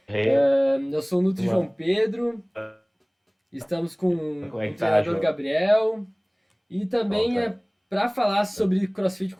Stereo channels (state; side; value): identical; both; correlation 1.00